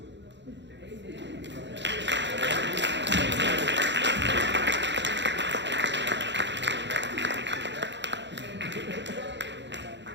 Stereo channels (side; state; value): left; late; 0.52 ms